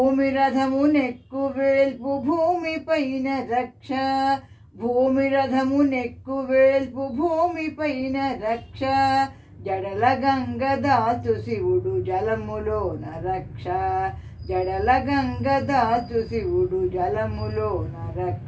రథమునెక్కు వేల్పు భూమి పైన రక్ష భూమి రథమునెక్కు వేల్పు భూమి పైన రక్ష జడల గంగ దాచు శివుడు జలములోన రక్ష జడల గంగ దాచు శివుడు జలములోన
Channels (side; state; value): both; identical; correlation 1.00